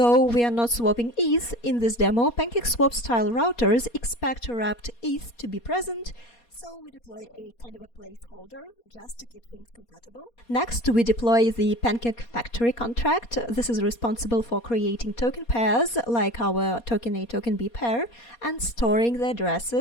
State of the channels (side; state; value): right; late; 4.2 ms